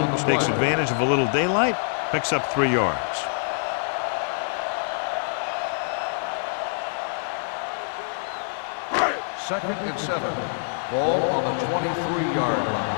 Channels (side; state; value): right; silent; 62 dB below the other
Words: takes advantage of a little daylight, picks up 3 yards. Second and 7. Ball on the 23-yard line.